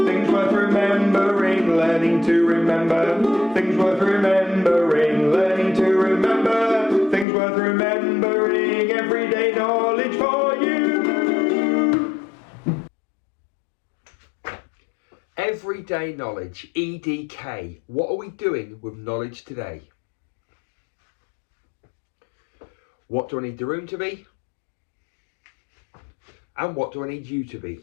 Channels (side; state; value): right; drops out; at 7.2 s